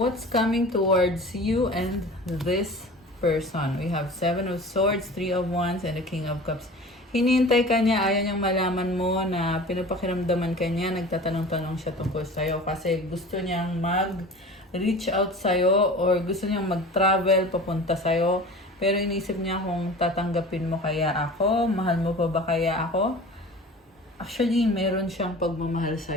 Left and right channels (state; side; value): normal; both; correlation 0.39